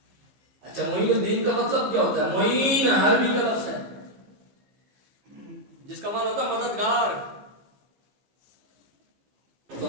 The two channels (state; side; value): late; left; 15 ms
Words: اچھا، معین الدین کا مطلب کیا ہوتا ہے؟ معین عربی کا لفظ ہے جس کا معنی ہوتا ہے مددگار،